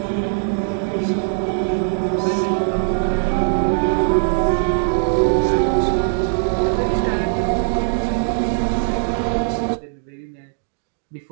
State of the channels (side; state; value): left; silent; digital silence